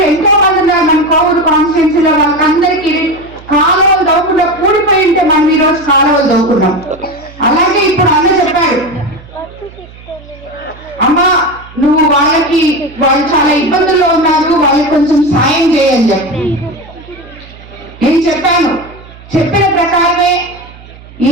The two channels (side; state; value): right; noise; hum, 20 dB below the sound